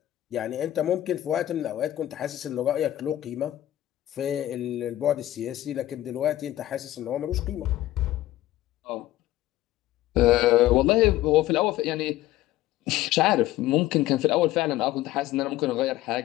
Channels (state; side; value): quieter; right; 14.7 dB